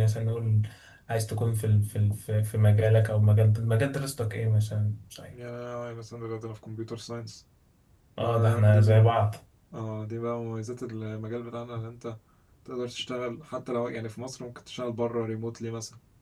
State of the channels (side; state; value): both; identical; correlation 1.00